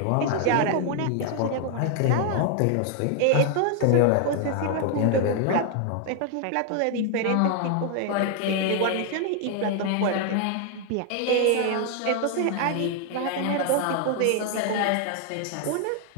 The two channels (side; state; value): both; different; correlation 0.00